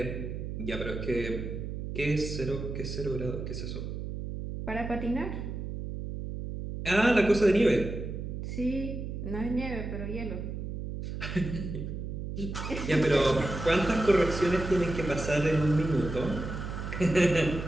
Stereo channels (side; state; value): right; noise; hum, 6 dB below the sound